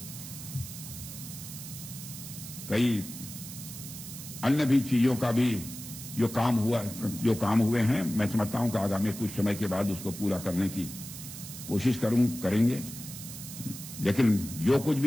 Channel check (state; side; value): noise; right; hiss, 11 dB below the sound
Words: कई अन्य भी चीजों का भी जो काम हुए हैं, मैं समझता हूं कि आगामी कुछ समय के बाद उसको पूरा करने की कोशिश करेंगे। लेकिन जो कुछ